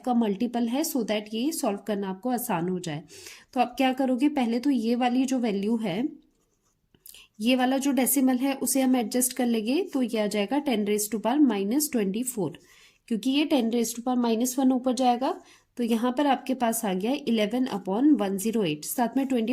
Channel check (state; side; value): identical; both; correlation 1.00